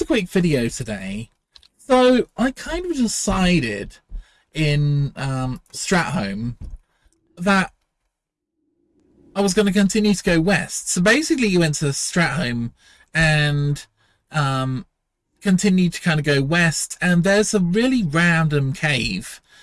a quick video today. So I kind of decided in Strat that I was going to continue to go west. So basically you went to Strat and continued to kind of go west, and there's a really random cave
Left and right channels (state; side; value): identical; both; correlation 1.00